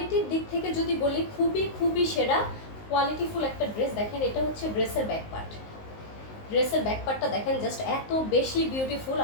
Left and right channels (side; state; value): right; late; 19 ms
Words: দিক থেকে যদি বলি খুবই খুবই সেরা কোয়ালিটিফুল একটা ড্রেস। দেখেন এটা হচ্ছে ড্রেসের ব্যাক পার্ট। ড্রেসের ব্যাক পার্টটা দেখেন জাস্ট এত বেশি বিউটিফুল,